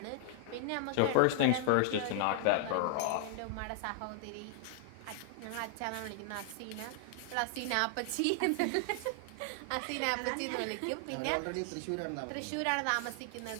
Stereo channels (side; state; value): both; different; correlation 0.00